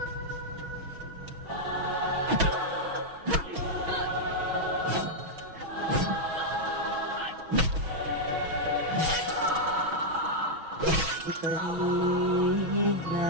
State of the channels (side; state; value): left; late; 6.2 ms